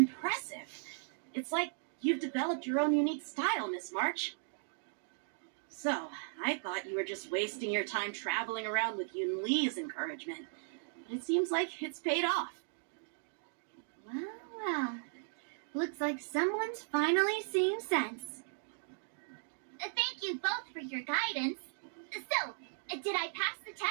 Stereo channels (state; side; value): silent; left; digital silence